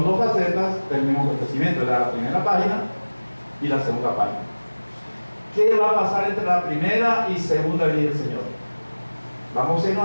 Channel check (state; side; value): inverted; both; correlation -1.00